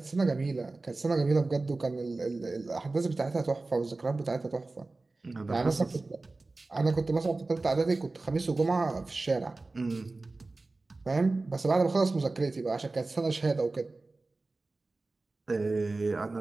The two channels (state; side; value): quieter; left; 3.3 dB